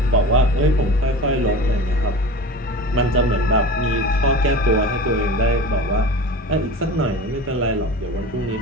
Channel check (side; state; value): both; normal; correlation 0.34